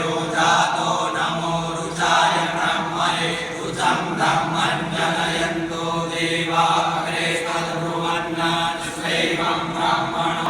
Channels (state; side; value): identical; both; correlation 1.00